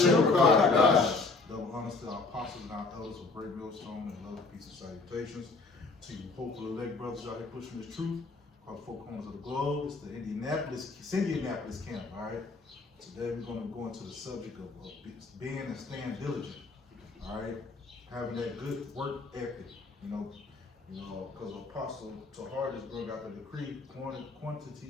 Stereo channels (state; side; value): quieter; right; 3.8 dB